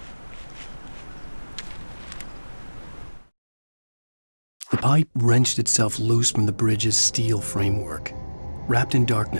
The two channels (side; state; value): both; inverted; correlation -1.00